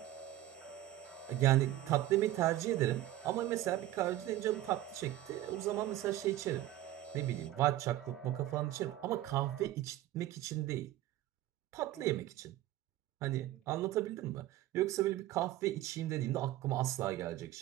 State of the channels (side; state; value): left; quieter; 14.4 dB